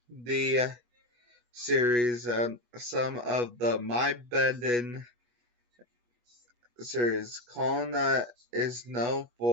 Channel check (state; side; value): late; left; 8.2 ms